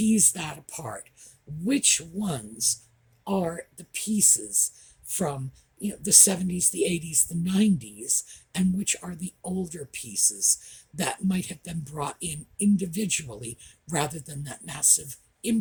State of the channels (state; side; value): identical; both; correlation 1.00